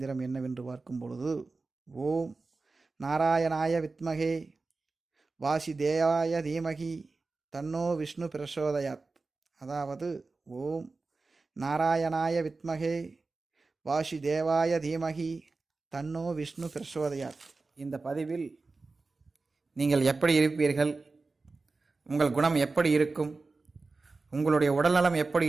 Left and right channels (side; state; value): left; quieter; 3.8 dB